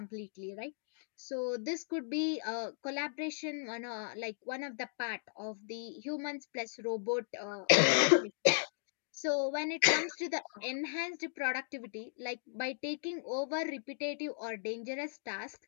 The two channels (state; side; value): silent; right; digital silence